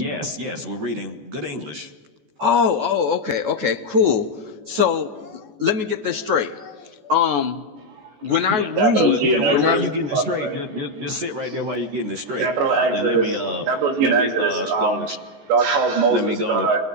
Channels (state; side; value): late; left; 14 ms